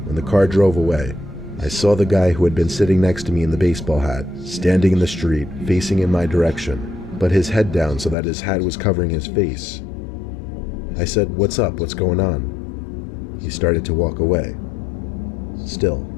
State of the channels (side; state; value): right; drops out; at 8.2 s